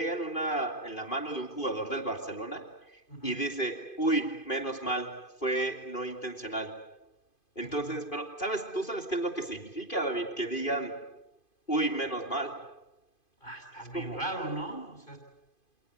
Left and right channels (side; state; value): right; late; 2.5 ms